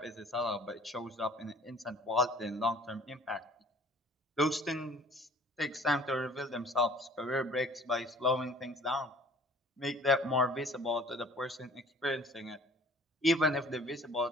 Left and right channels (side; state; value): both; normal; correlation 0.52